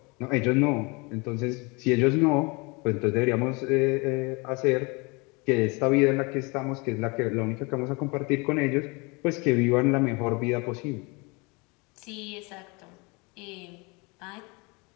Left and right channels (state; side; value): quieter; right; 28.3 dB